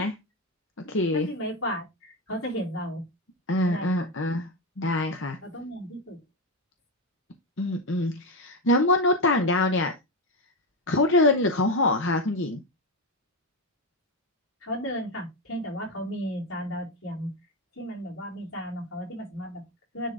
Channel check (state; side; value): normal; both; correlation 0.12